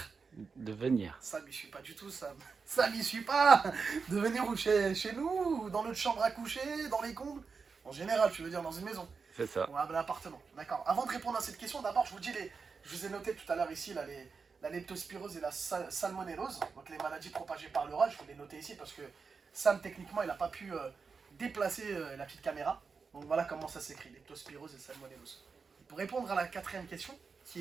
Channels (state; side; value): quieter; left; 5.1 dB